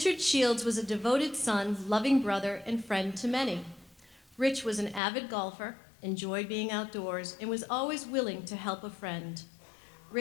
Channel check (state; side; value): drops out; right; at 5.0 s